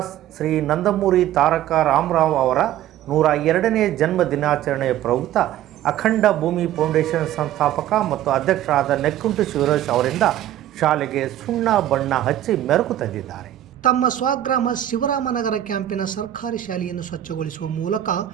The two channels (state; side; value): quieter; left; 12.4 dB